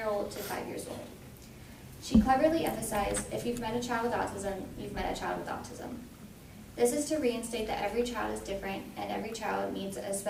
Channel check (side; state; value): both; identical; correlation 1.00